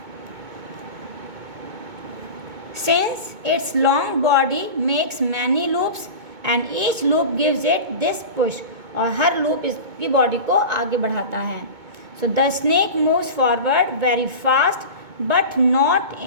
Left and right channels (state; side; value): late; left; 2.2 ms